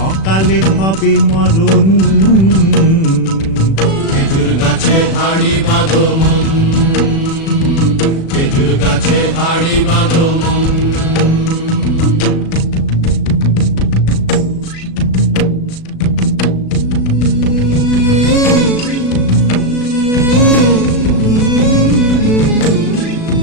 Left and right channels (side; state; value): right; late; 36 ms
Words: অকালে হবে মরণ। খেজুর গাছে হাড়ি বাঁধো মন, খেজুর গাছে হাড়ি বাঁধো মন।